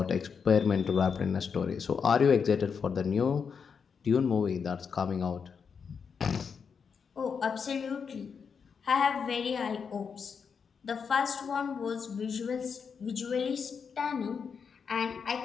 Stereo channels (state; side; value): quieter; right; 6.2 dB